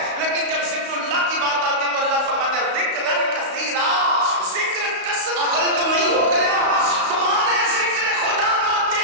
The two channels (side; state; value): left; late; 35 ms